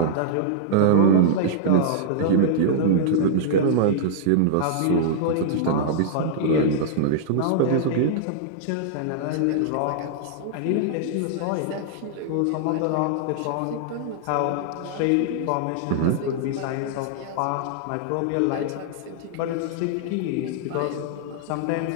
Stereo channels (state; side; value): different; both; correlation -0.02